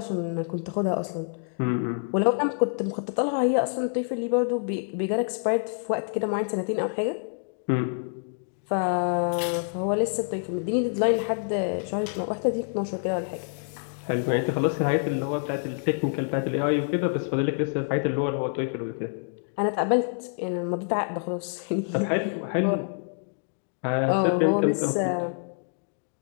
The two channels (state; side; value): silent; right; digital silence